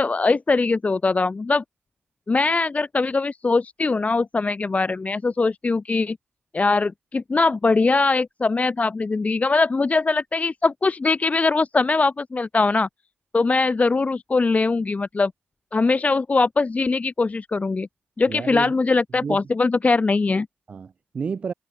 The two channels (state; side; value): quieter; right; 3.2 dB